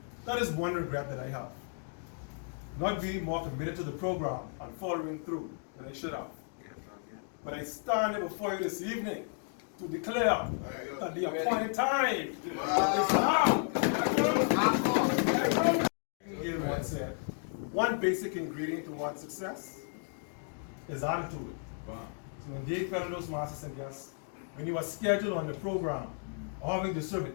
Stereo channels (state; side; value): silent; right; 55 dB below the other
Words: That is one regret that I have. Not being more committed to the program and following through than I should have. But I stand here before you this evening to declare that the appointed time is now. Gail once said, one basic ingredient to one's success is attitude. So when they fellow those masters and guests, when you are scheduled on the program or having to serve